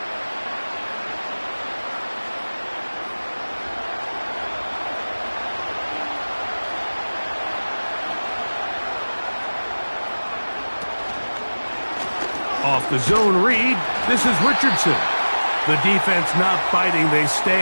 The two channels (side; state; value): both; inverted; correlation -1.00